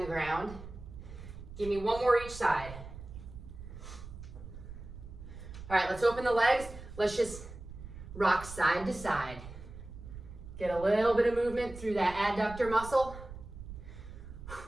ground. Give me 1 more each side. All right, let's open the legs. Let's just rock side to side. Get a little bit of movement through that adductor muscle.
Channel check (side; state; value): right; noise; rumble, 13 dB below the sound